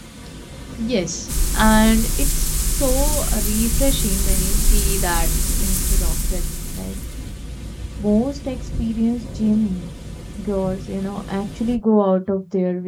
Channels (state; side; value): identical; both; correlation 1.00